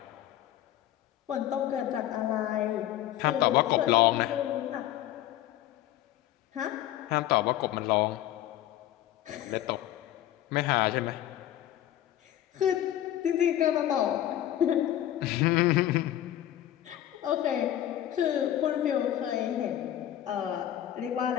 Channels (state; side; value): quieter; right; 12.7 dB